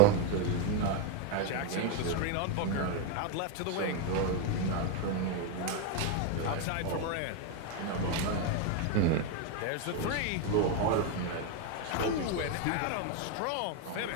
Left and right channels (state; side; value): different; both; correlation 0.01